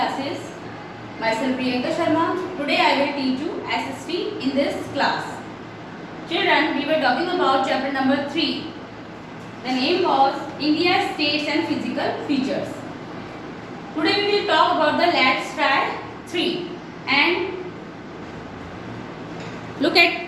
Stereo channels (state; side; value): identical; both; correlation 1.00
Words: Myself Priyanka Sharma. Today I will teach you SST in this class. Children, we were talking about chapter number 3. The name was India's States and Physical Features. Today we will talk about the Let's Try 3 and look